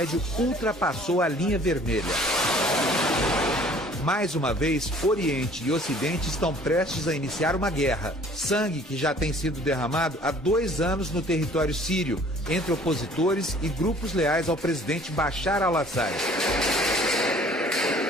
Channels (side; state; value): both; normal; correlation 0.53